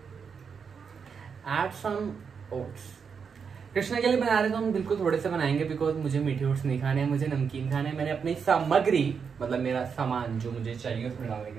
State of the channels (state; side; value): quieter; left; 6.2 dB